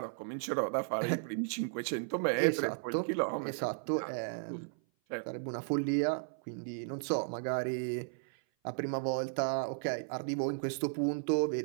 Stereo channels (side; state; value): left; silent; 55 dB below the other